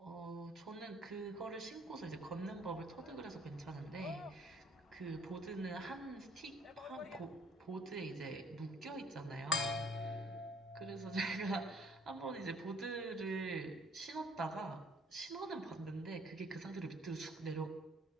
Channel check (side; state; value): both; normal; correlation 0.58